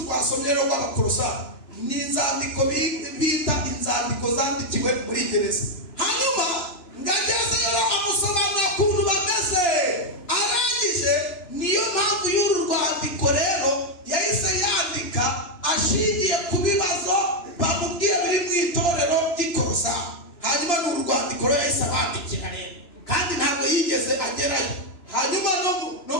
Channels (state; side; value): late; right; 2.9 ms